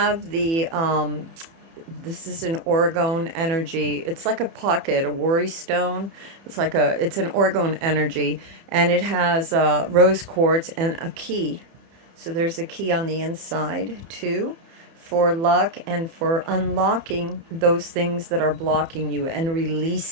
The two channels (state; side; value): late; left; 30 ms